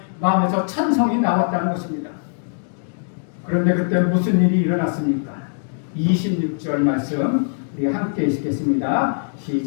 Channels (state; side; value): silent; right; digital silence